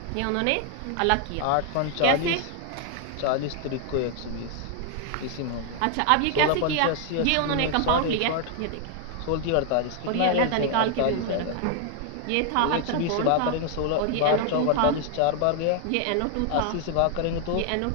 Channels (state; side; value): different; both; correlation 0.00